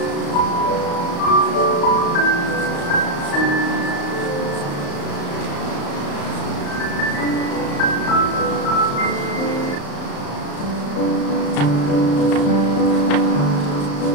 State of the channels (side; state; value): right; late; 35 ms